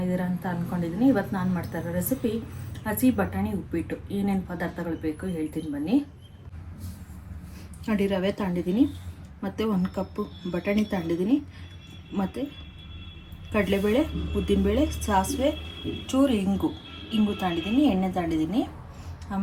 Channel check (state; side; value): identical; both; correlation 1.00